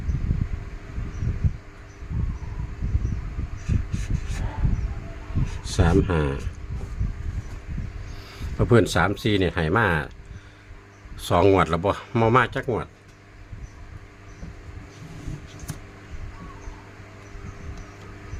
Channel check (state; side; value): identical; both; correlation 1.00